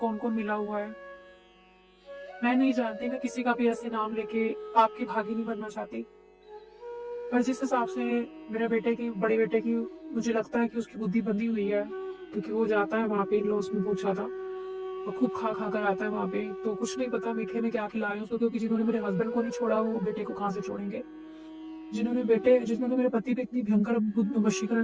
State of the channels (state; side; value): identical; both; correlation 1.00